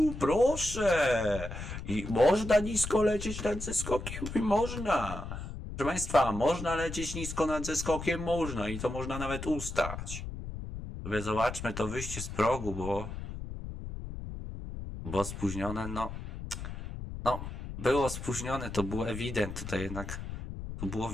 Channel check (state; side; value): noise; left; rumble, 8 dB below the sound